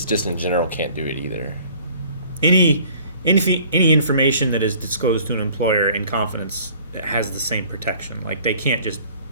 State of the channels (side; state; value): both; inverted; correlation -0.53